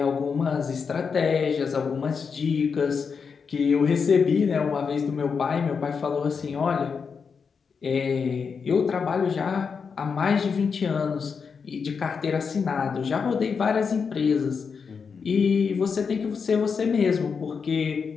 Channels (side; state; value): right; quieter; 5.8 dB